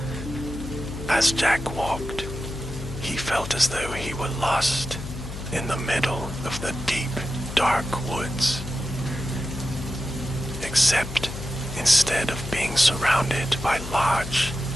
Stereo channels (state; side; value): noise; left; hum, 9 dB below the sound